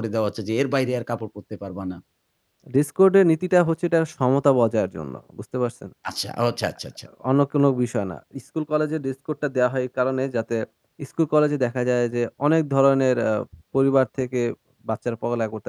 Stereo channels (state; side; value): identical; both; correlation 1.00